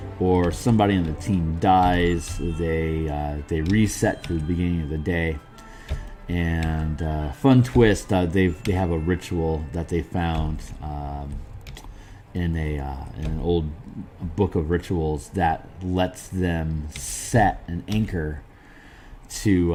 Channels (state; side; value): identical; both; correlation 1.00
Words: or somebody on the team dies, they reset to the beginning of the day. And fun twist, they have a ritual that they found in an old book of rituals that lets them set an anchor to